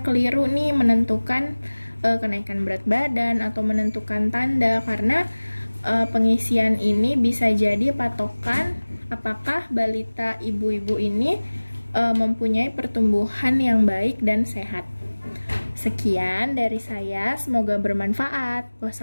keliru nih menentukan kenaikan berat badan atau menentukan tanda, karena pengisian ini bisa jadi patokan apakah balita ibu-ibu ini mempunyai pertumbuhan yang baik dan sehat. Sekian dari saya, semoga bermanfaat.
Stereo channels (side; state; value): both; inverted; correlation -1.00